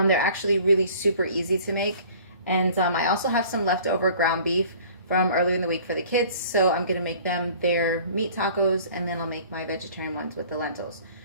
actually really super easy to make. And I also have some leftover ground beef from earlier in the week for the kids. So I'm gonna make them their meat tacos, and then I'll make my vegetarian ones with the lentils.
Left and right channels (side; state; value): both; inverted; correlation -0.49